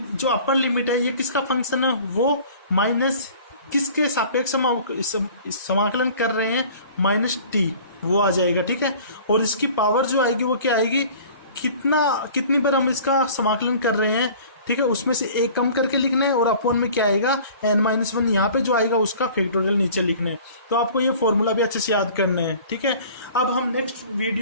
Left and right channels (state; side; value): inverted; both; correlation -0.46